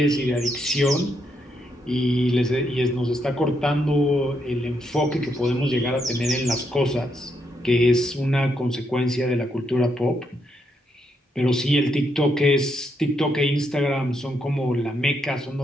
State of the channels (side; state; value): both; normal; correlation 0.78